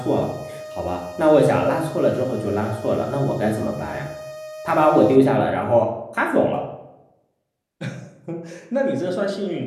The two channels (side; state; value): both; identical; correlation 1.00